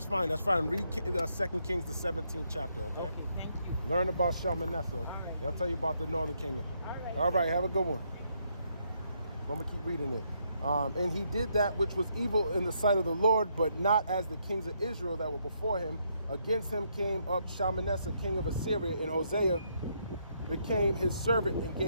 fine, that's fine. Read 2 Kings, the 17th chapter, okay? Okay, thank you. Learn about Shalmaneser. All right. They'll tell you about the northern kingdom. All right. Have a good one. I'm gonna keep reading it. And he did that which was evil in the sight of the Lord, but not as the kings of Israel that were before him. Against him came up Shalmaneser, king of Assyria, and Hosea became his servant and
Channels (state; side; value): inverted; both; correlation -0.75